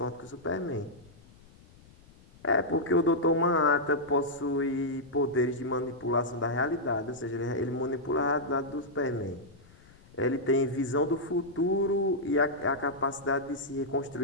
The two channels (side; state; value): left; noise; rumble, 25 dB below the sound